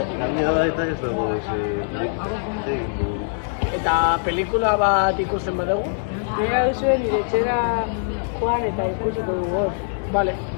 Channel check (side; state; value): right; silent; 64 dB below the other